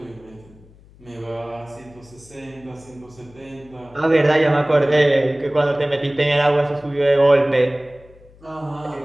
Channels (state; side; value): noise; left; hum, 25 dB below the sound